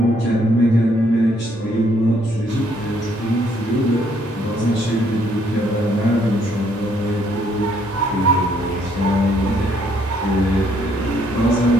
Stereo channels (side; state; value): both; normal; correlation 0.68